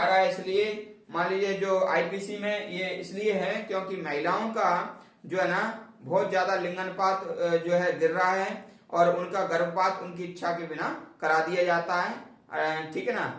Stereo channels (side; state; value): both; identical; correlation 1.00